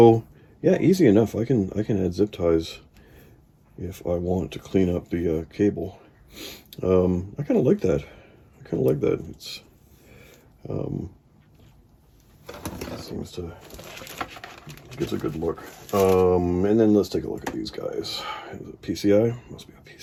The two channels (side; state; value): both; identical; correlation 1.00